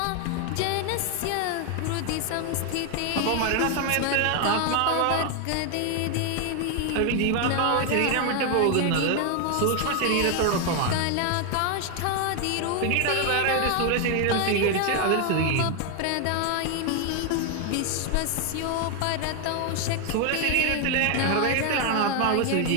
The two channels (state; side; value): different; both; correlation 0.01